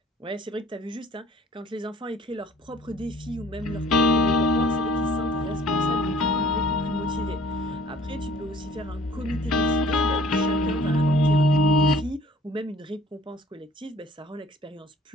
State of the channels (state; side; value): normal; both; correlation 0.54